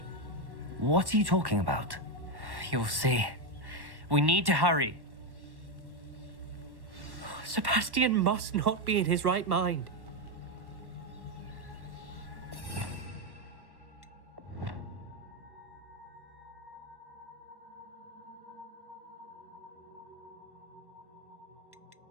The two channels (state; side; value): late; left; 1.1 ms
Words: What are you talking about? You'll see. We need to hurry. Sebastian must not be in his right mind.